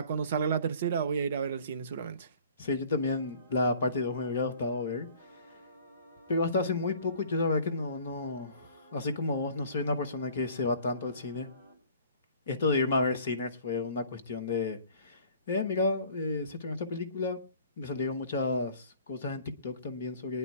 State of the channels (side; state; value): both; inverted; correlation -0.51